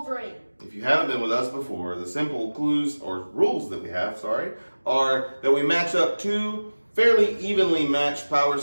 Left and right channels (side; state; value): both; inverted; correlation -1.00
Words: If you haven't been with us before, the simple clues or rules that we have, are that we match up two fairly evenly matched power